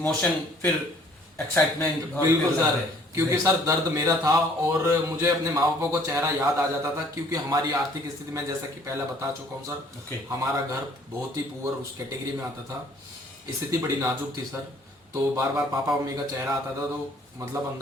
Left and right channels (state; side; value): normal; both; correlation 0.58